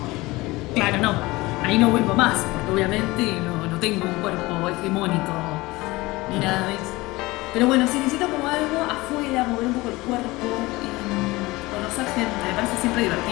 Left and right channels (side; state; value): right; quieter; 21.0 dB